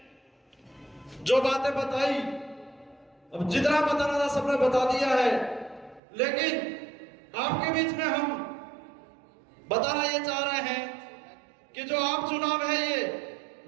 जो बातें बताई, अब जितना बताना था सबने बता दिया है, लेकिन आपके बीच में हम बताना ये चाह रहे हैं कि जो आम चुनाव है, ये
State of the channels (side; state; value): left; drops out; at 6.0 s